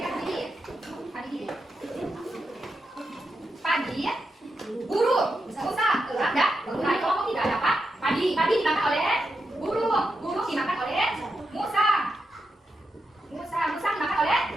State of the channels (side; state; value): both; normal; correlation 0.86